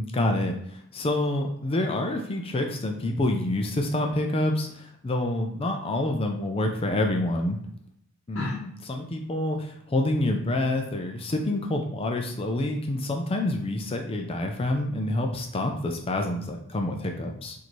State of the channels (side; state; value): both; normal; correlation 0.63